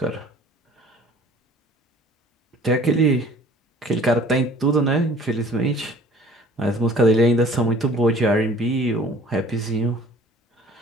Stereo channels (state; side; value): normal; both; correlation 0.51